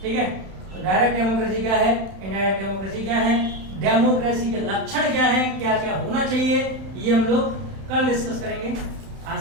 ठीक है, तो डायरेक्ट डेमोक्रेसी क्या है, इनडायरेक्ट डेमोक्रेसी क्या है, डेमोक्रेसी के लक्षण क्या है, क्या क्या होना चाहिए, ये हम लोग कल डिस्कस करेंगे।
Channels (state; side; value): late; left; 31 ms